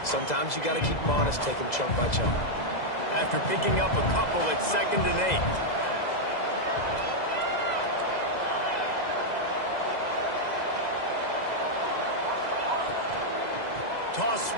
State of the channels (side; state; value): right; late; 2.0 ms